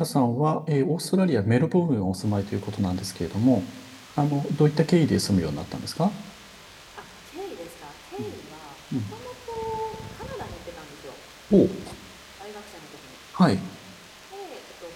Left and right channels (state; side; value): identical; both; correlation 1.00